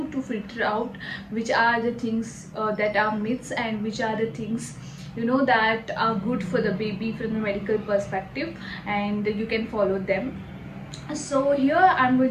to filter out which are the things that are myths and which are the things that are good for the baby from a medical perspective, and you can follow them. So here I'm going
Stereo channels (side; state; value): both; identical; correlation 1.00